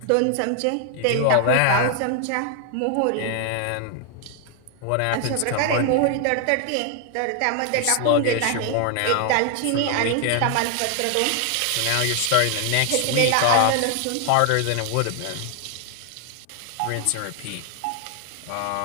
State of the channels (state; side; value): different; both; correlation 0.00